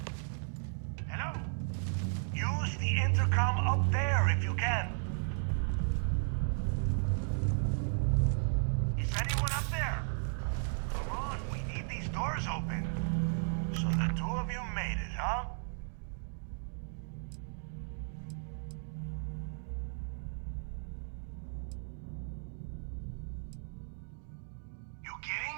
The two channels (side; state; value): left; silent; digital silence